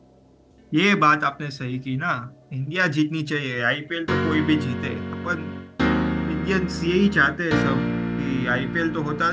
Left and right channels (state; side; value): identical; both; correlation 1.00